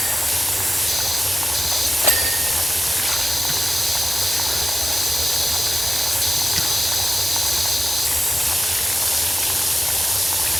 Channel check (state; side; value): normal; both; correlation 0.93